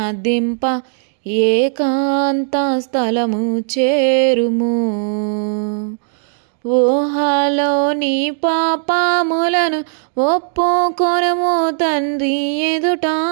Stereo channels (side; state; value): left; silent; 68 dB below the other